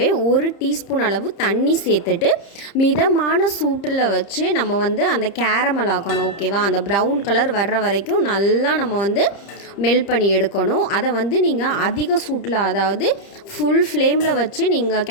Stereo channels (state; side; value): late; right; 30 ms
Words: 1 டீஸ்பூன் அளவு தண்ணி சேர்த்துட்டு மிதமான சூட்டில் வச்சு நம்ம அந்த கேரமல் ஆக்கணும். ஓகேவா? அந்த ப்ரௌன் கலர் வர்ற வரைக்கும் நல்லா நம்ம மெல்ட் பண்ணி எடுக்கணும். அதை நீங்கள் அதிக சூட்டில், அதாவது ஃபுல் ஃப்ளேமில் வச்சு நீங்கள்